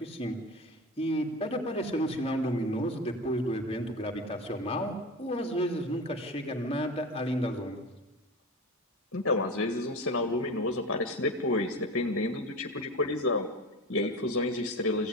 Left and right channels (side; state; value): both; normal; correlation 0.27